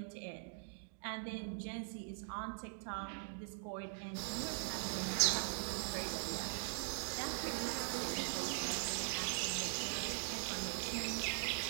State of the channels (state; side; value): silent; left; digital silence